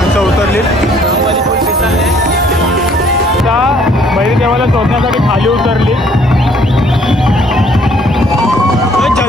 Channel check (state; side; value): normal; both; correlation 0.61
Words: देवाला शोधण्यासाठी खाली उतरली.